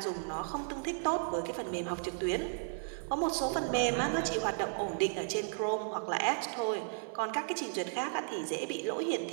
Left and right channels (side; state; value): left; silent; 55 dB below the other